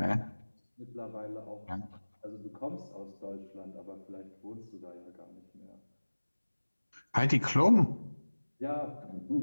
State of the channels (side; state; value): both; inverted; correlation -1.00